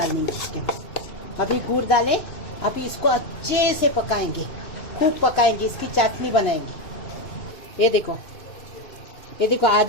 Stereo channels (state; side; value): late; right; 2.9 ms